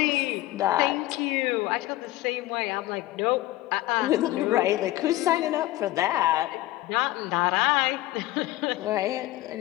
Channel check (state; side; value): quieter; right; 16.9 dB